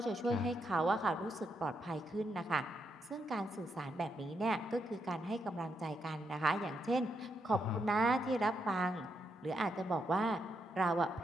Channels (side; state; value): both; normal; correlation 0.80